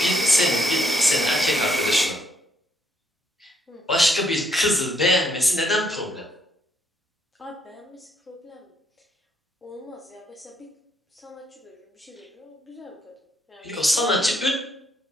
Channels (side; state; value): both; normal; correlation 0.72